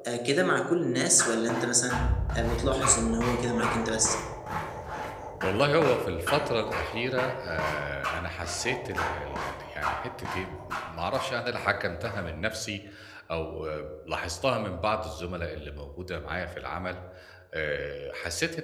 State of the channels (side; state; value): both; identical; correlation 1.00